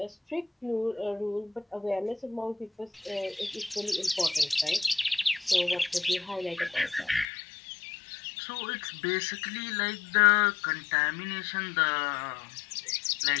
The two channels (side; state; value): right; drops out; at 7.2 s